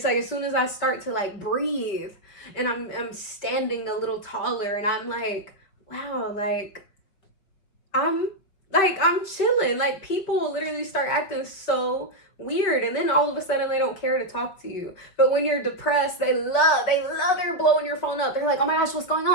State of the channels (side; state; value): right; late; 5.5 ms